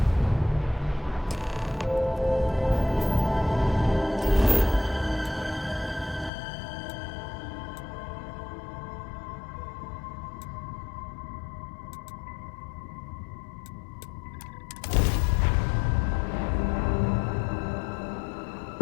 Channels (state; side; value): drops out; right; at 6.3 s